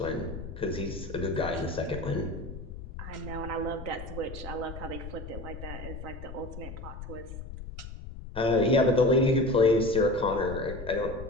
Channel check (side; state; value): left; noise; rumble, 10 dB below the sound